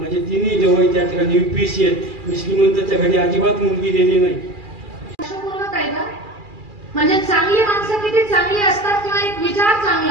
तिन्ही जवळ त्या ठिकाणी UPSC आहेत. मी श्रीमंताच्या घरी अजिबात मुलगी दिली नाही. म्हणजे चांगली माणसं किती चांगली असतात किंवा एक विचार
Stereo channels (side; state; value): left; late; 2.4 ms